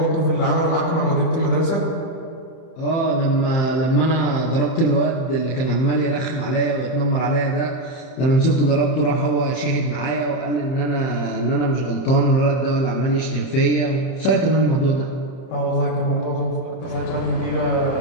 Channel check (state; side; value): late; right; 31 ms